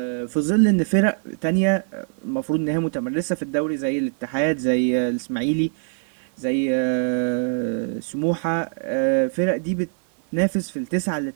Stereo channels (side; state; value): left; silent; 63 dB below the other